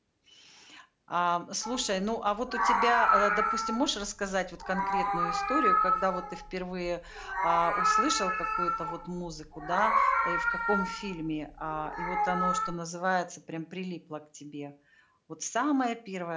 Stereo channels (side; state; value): both; identical; correlation 1.00